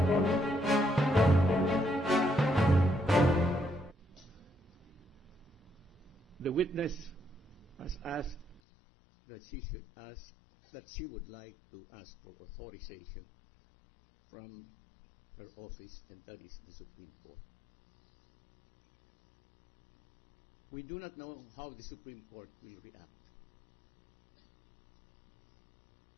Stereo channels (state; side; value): drops out; right; at 8.6 s